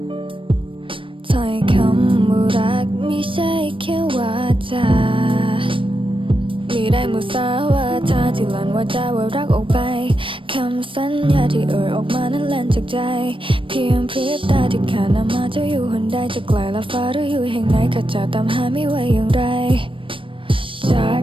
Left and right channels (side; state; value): left; late; 0.25 ms